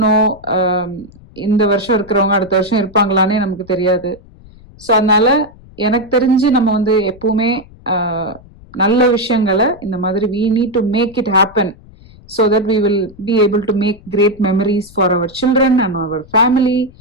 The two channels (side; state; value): left; noise; rumble, 23 dB below the sound